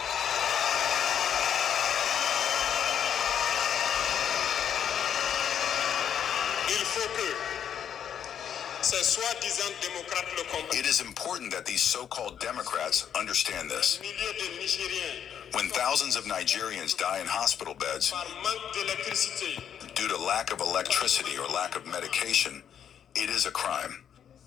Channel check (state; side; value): quieter; right; 8.8 dB